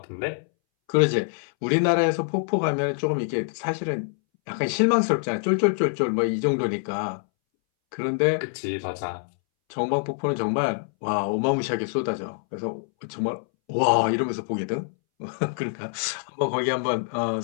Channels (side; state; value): right; silent; 62 dB below the other